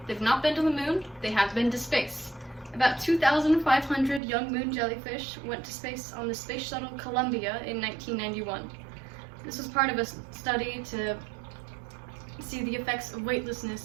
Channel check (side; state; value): left; drops out; at 4.2 s